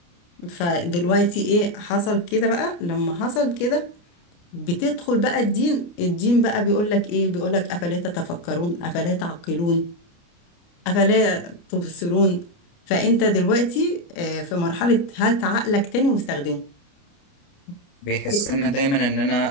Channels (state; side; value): late; right; 29 ms